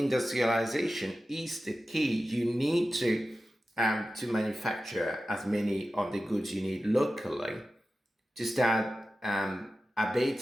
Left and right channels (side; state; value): both; normal; correlation 0.93